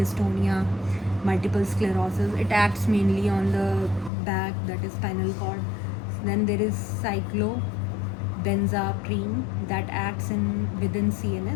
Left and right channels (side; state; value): right; drops out; at 4.1 s